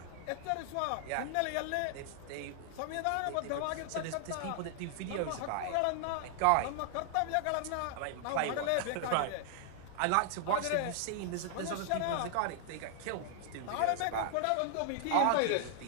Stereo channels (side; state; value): both; different; correlation 0.00